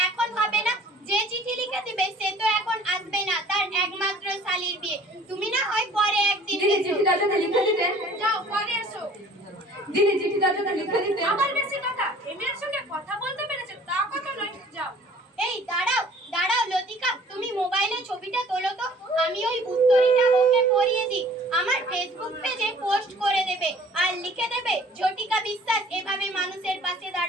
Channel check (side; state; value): both; normal; correlation 0.52